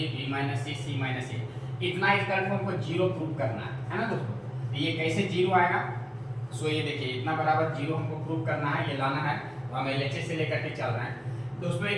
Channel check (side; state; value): both; identical; correlation 1.00